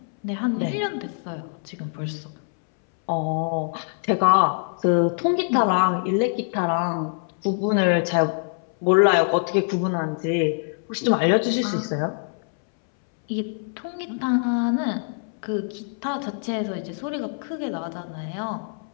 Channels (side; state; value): right; silent; 62 dB below the other